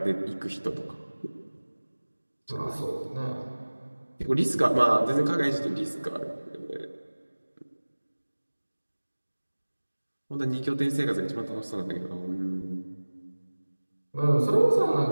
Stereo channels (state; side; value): inverted; both; correlation -1.00